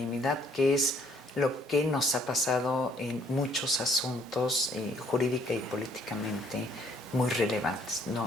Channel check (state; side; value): normal; both; correlation 0.63